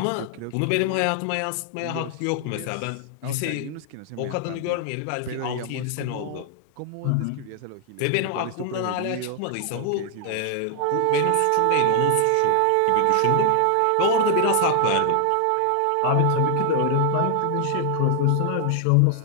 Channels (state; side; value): different; both; correlation 0.00